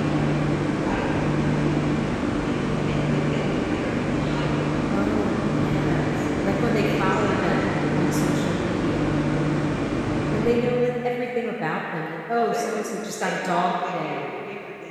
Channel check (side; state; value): both; identical; correlation 1.00